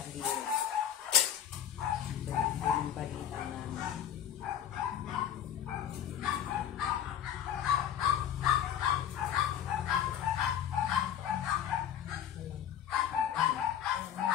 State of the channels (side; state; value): right; quieter; 9.8 dB